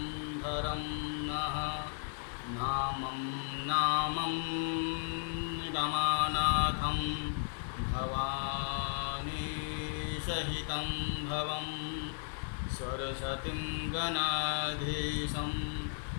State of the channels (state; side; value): silent; right; digital silence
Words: धरं नः। नामं रमानाथं भवानी सहितं भवं। सरस्वतीं गणाधीशं